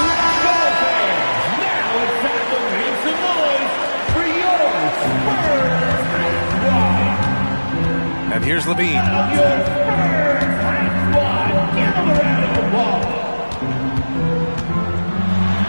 And here's Levine.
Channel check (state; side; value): inverted; both; correlation -1.00